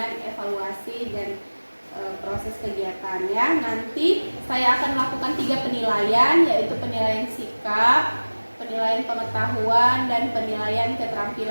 evaluasi dan proses kegiatan ya. Nanti saya akan melakukan 3 penilaian, yaitu penilaian sikap, penilaian pengetahuan, dan penilaian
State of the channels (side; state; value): both; inverted; correlation -1.00